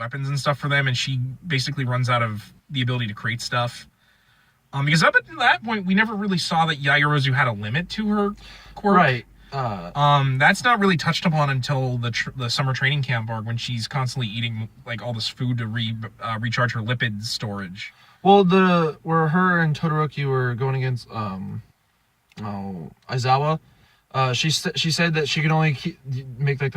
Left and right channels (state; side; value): identical; both; correlation 1.00